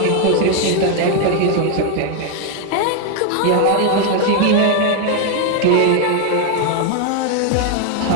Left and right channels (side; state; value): both; different; correlation 0.01